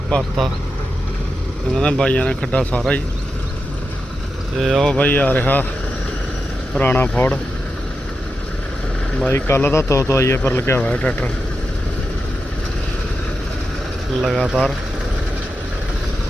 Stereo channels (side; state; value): both; normal; correlation 0.89